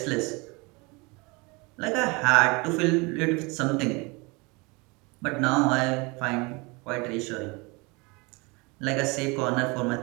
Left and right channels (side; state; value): left; quieter; 27.3 dB